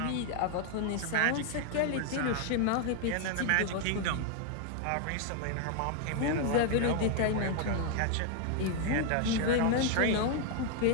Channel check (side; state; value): both; different; correlation 0.00